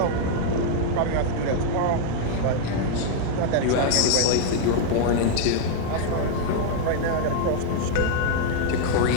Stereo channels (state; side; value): different; both; correlation 0.00